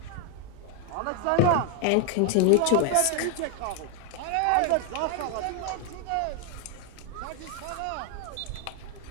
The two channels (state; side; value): different; both; correlation 0.01